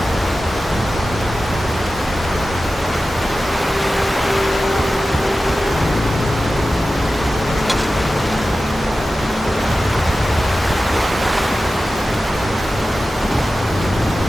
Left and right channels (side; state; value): both; normal; correlation 0.94